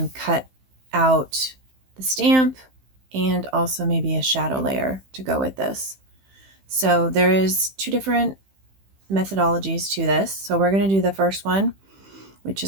cut out the stamp and also maybe a shadow layer to go with this. So there is two different methodologies to this. So we're going to do the first one, which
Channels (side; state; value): left; late; 15 ms